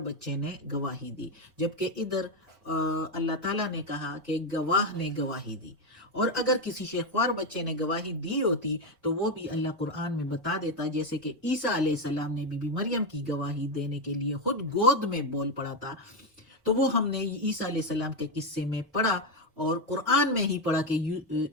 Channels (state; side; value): normal; both; correlation 0.09